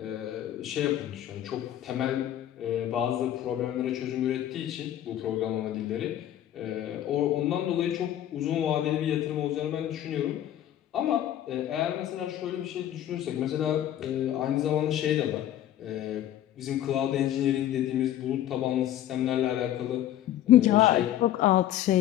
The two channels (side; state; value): right; quieter; 12.0 dB